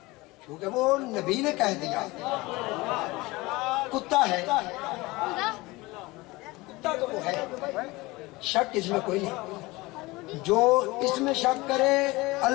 क्योंकि वो नबी ने कह दिया कुत्ता है। कुत्ता तो वो है, शक इसमें कोई नहीं। जो इसमें शक करे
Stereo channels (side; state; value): right; quieter; 21.8 dB